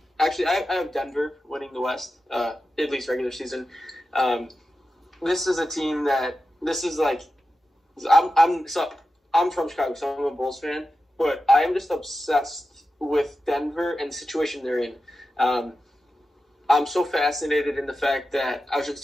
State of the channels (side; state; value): both; normal; correlation 0.92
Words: actually, I have Denver winning the West, at least regular season. This is a team that I'm from Chicago, so I'm a Bulls fan, but I am just obsessed with Denver and the situation they're in. I'm so fascinated in the fact that I was just